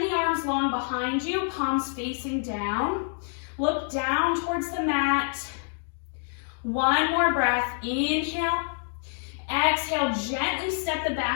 the arms long behind you, palms facing down. Look down towards the mat. One more breath, inhale. Exhale, gently step the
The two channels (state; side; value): silent; right; 60 dB below the other